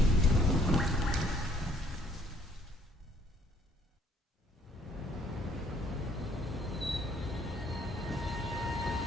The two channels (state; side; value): normal; both; correlation 0.63